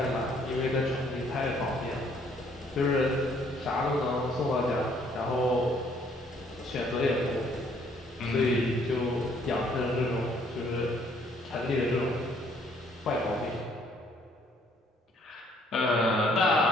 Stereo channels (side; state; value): both; normal; correlation 0.64